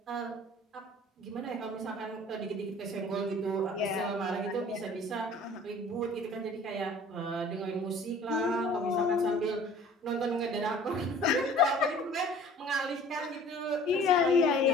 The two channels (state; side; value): normal; both; correlation 0.49